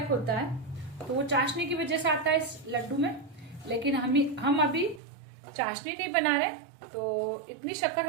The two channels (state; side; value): drops out; left; at 5.0 s